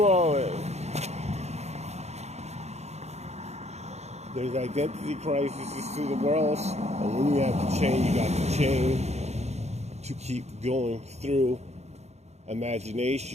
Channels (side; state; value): left; late; 0.32 ms